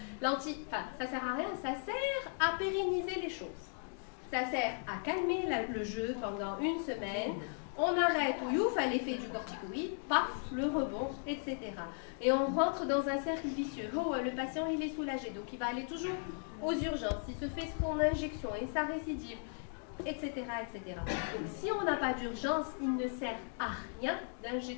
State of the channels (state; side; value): silent; right; 53 dB below the other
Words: Ça sert à rien, ça sert à pérenniser les choses. Ça sert à calmer le jeu pendant une semaine. On arrête, ouf, à l'effet du corticoïde, paf, le rebond, etc. Et on rentre dans un cercle vicieux. Oh, le patient, il est soulagé, donc il va aller toujours aux urgences. Il se fait son injection et sa récidive, etc., etc. Donc si on n'a pas d'urgence, il ne sert à rien